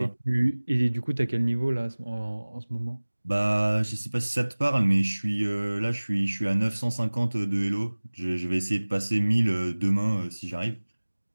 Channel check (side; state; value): both; inverted; correlation -1.00